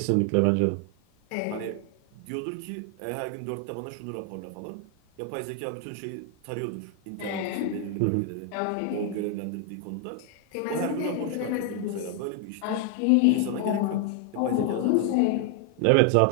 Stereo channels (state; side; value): different; both; correlation 0.00